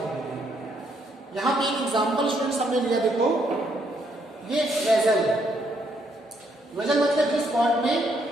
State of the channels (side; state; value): both; normal; correlation 0.73